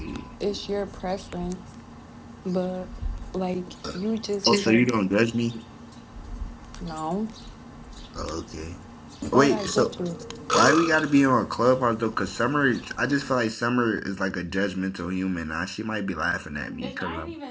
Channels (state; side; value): identical; both; correlation 1.00